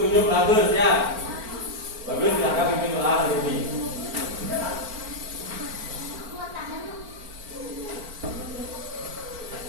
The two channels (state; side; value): late; left; 4.4 ms